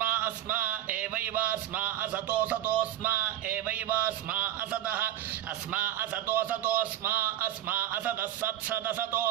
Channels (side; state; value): left; quieter; 12.8 dB